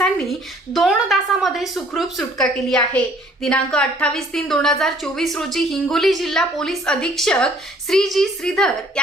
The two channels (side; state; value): both; normal; correlation 0.58